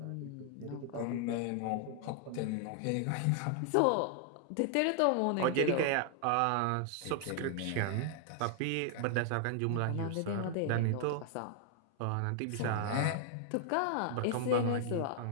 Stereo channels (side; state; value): both; different; correlation 0.00